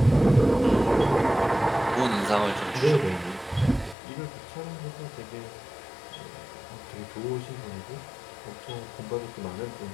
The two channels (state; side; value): drops out; right; at 4.0 s